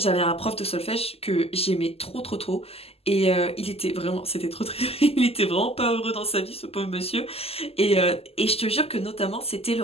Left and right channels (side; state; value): right; late; 0.29 ms